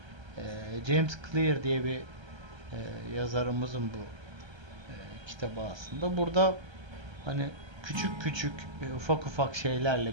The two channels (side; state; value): left; late; 1.3 ms